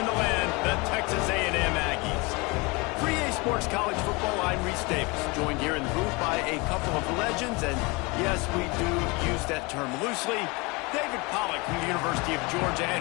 in the land, the Texas A&M Aggies. For EA Sports College Football, I'm Reese Davis, joined here in the booth by a couple of legends, and yes, we do use that term loosely. David Pollack from the University of Georgia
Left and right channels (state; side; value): quieter; right; 26.5 dB